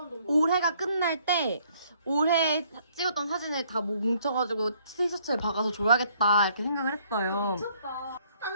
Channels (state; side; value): inverted; both; correlation -0.64